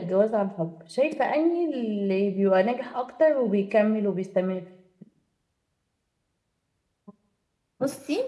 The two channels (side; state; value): both; identical; correlation 1.00